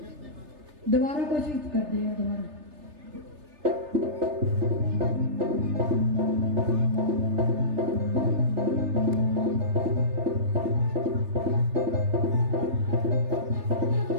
दोबारा कोशिश करते हैं दोबारा।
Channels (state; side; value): late; left; 3.3 ms